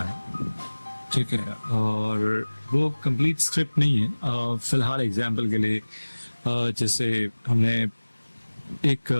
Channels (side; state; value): both; inverted; correlation -1.00